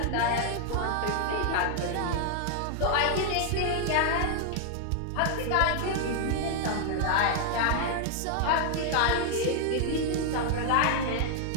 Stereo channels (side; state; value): both; different; correlation 0.00